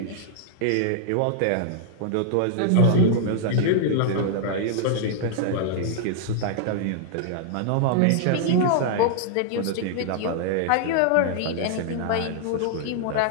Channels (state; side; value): different; both; correlation -0.01